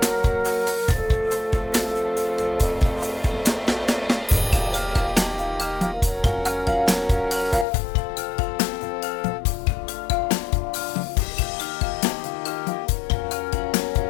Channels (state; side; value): drops out; right; at 7.7 s